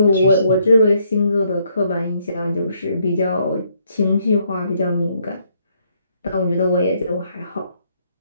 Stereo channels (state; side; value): inverted; both; correlation -0.72